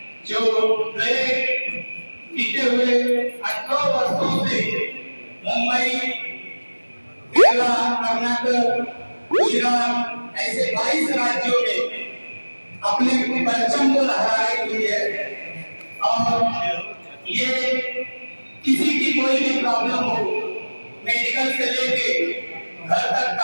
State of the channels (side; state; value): both; inverted; correlation -1.00